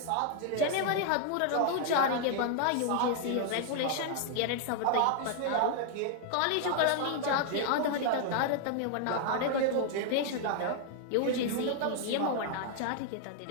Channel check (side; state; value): both; different; correlation 0.00